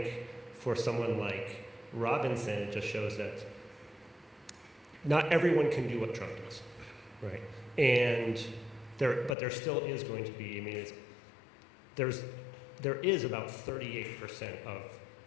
for someone like Robinson, it just shows that not everyone can do what Trump does, right? And but there still is going to be, there is about 38% of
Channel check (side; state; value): right; drops out; at 9.3 s